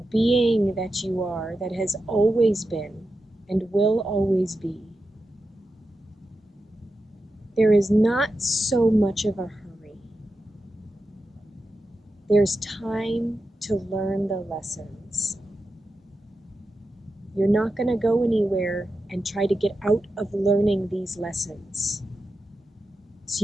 being that you are, that has always been and will always be, there is not so much of a hurry. There's time to learn the lessons. You're not going to go anywhere and try to get out of learning these lessons. So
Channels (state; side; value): normal; both; correlation 0.90